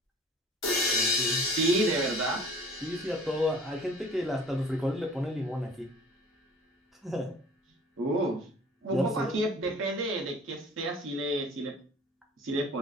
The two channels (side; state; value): both; normal; correlation 0.47